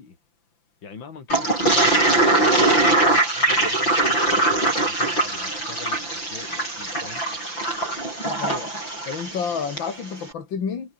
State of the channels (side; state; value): right; late; 5.9 ms